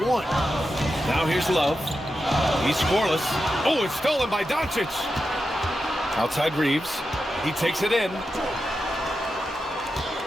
Now here's Love. He's scoreless. Oh, it's stolen by Doncic. Outside Reeves. He takes it in. 2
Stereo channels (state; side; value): normal; both; correlation 0.89